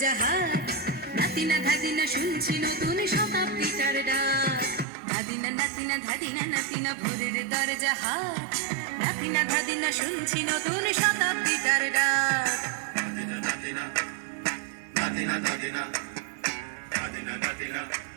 হাট, নাতিনা ধাদিনা শুনছি নতুন শতাব্দীটার ডাক। ধাদিনা নাতিনা ধাদিনা নাতিনা ভোরের দরজা হাট, নাতিনা ধাদিনা শুনছি নতুন শতাব্দীটার ডাক। নাতিনা নাতিনা নাতিনা ধাদিনা ধাদিনা নাতিনা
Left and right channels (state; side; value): drops out; left; at 4.9 s